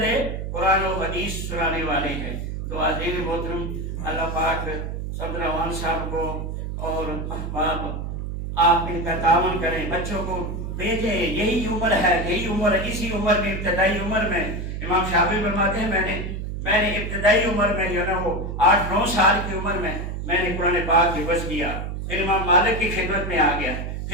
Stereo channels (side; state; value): right; noise; hum, 5 dB below the sound